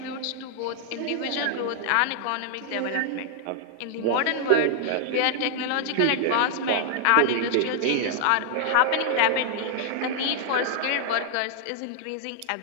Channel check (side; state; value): both; different; correlation -0.01